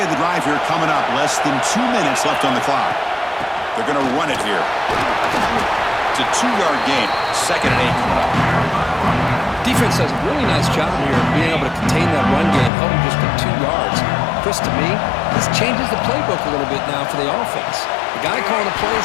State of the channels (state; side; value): drops out; right; at 12.7 s